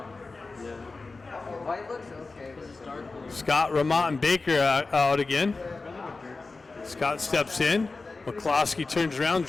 Scott, Remont, and Baker out again. Scott steps in. McCloskey turns around,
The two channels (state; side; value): quieter; right; 3.8 dB